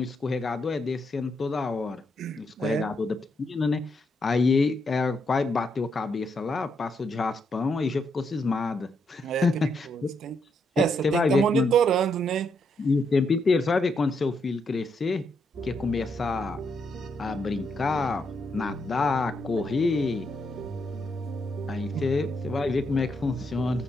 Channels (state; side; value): normal; both; correlation 0.78